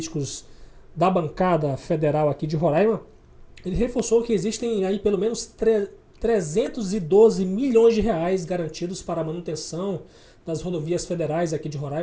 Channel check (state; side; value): identical; both; correlation 1.00